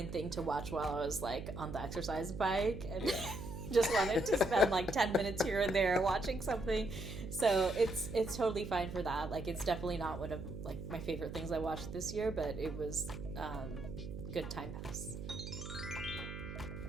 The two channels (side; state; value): right; noise; hum, 8 dB below the sound